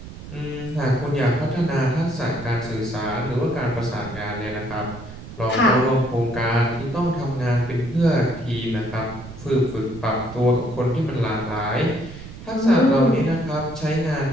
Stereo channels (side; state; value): right; noise; rumble, 14 dB below the sound